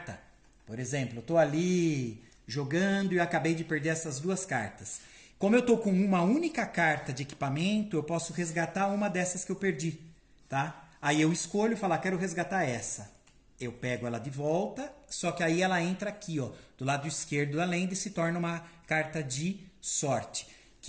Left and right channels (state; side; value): identical; both; correlation 1.00